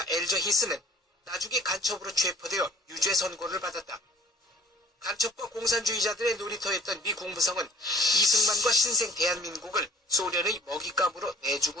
엘저 히스는 나중에 간첩으로 체포되어 유죄 선고를 받았다. 간첩과 공산주의자들의 놀이터였던 미 국무성은 이승만과 신생 대한민국을 소련의 먹잇감으로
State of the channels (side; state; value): both; normal; correlation 0.49